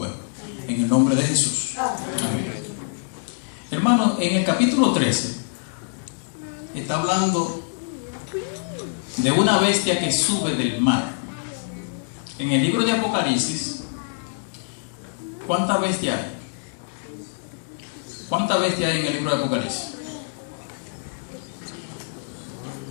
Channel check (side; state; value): right; silent; 62 dB below the other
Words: En el nombre de Jesús. Amén. Hermano, en el capítulo 13 está hablando de una bestia que sube del mar. En el libro de Apocalipsis, ¿cuántas bestias hay? ¿Cuántas bestias hay en el libro de Apocalipsis?